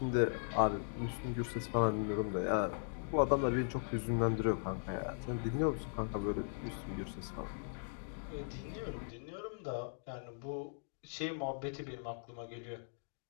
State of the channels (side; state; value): right; silent; digital silence